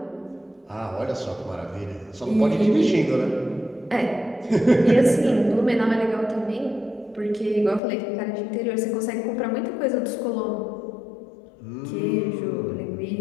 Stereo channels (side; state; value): right; drops out; at 7.8 s